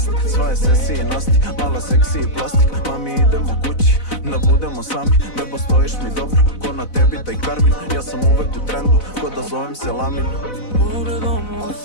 Sva je sesi i nasti, mala seksi i plastik. Mami idemo kući, da budemo sami. Bebo stojiš mi dobro, ko na tebi taj Karmin. Ja sam uvek u trendu, ko da zovem se Lamin. Pogledom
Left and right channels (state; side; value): late; right; 4.0 ms